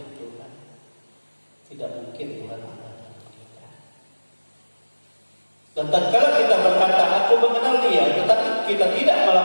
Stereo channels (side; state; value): both; inverted; correlation -1.00